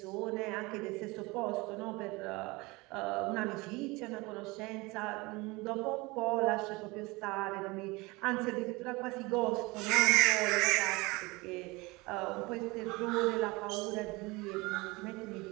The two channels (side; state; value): left; quieter; 23.8 dB